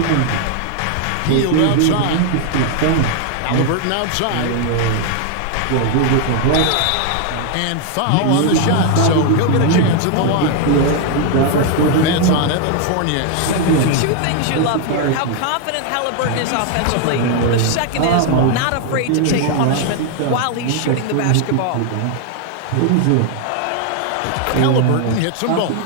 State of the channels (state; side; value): different; both; correlation 0.00